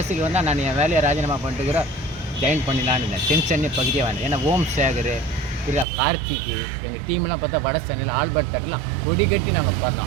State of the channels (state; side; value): drops out; left; at 5.9 s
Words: வந்தால் நான் என் வேலையை ராஜினாமா பண்ணிட்டுக்கிறோம், ஜாயின் பண்ணிடலான்னு இருந்தேன். சென்னை பகுதியாக வந்தேன். ஏன்னா ஓம் சேகர், கார்த்திக்கு, எங்கள் டீம்லாம் பார்த்தா வட சென்னையில் ஆல்பர்ட் தேட்டர்லாம் கொடி கட்டி நாங்கள்